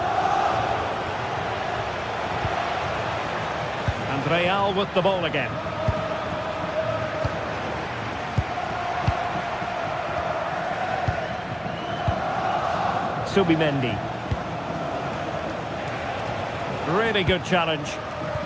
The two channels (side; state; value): both; identical; correlation 1.00